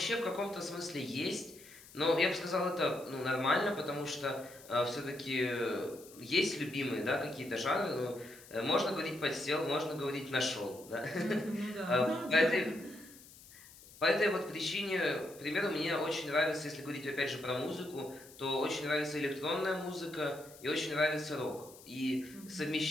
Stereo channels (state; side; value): noise; left; hiss, 20 dB below the sound